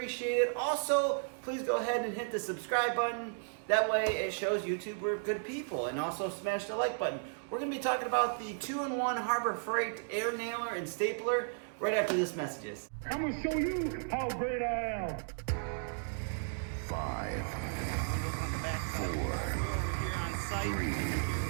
it. Also, please go ahead and hit the subscribe button. That way it shows YouTube we're good people. And also smash the like button. We're going to be talking about the 2-in-1 Harbor Freight air nailer and stapler right after this messages. I'm going to show you how great I am. 5, 4, 3,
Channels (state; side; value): silent; left; digital silence